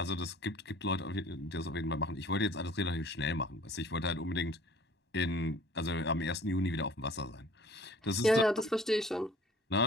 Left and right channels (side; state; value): both; normal; correlation 0.51